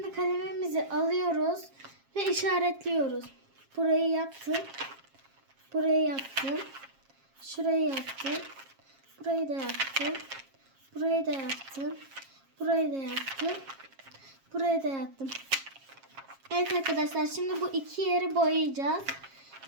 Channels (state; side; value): late; left; 7.4 ms